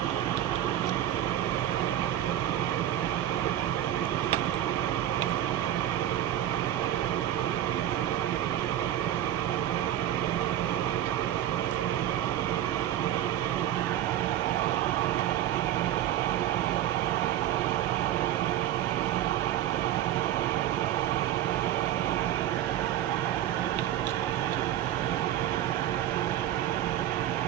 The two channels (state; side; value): quieter; left; 12.3 dB